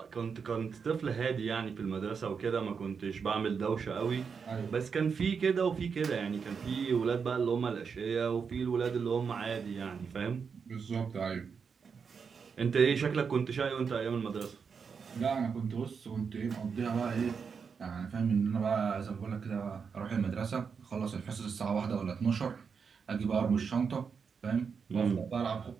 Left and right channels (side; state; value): left; quieter; 6.0 dB